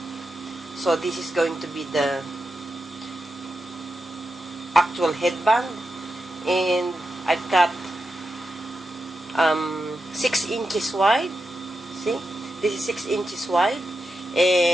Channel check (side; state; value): both; normal; correlation 0.89